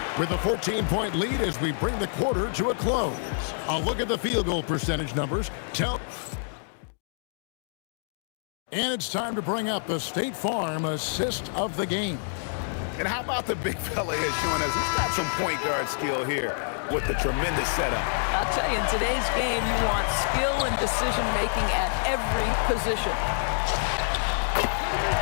with a 14-point lead as we bring the quarter to a close. A look at the field goal percentage numbers. And it's time to bring up the State Farm assist of the game. And how about the big fella here showing us he's got some point guard skill here with the tremendous setup. I'll tell you, in today's game, you want skill and decision-making at every position.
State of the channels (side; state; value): right; silent; digital silence